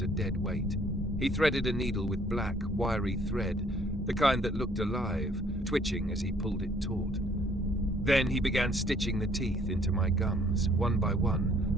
a dead weight. He threaded a needle with black, wiry thread, the kind that looked alive, twitching as he pulled it taut. Then he began stitching the teeth into my gums, one by one,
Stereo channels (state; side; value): normal; both; correlation 0.61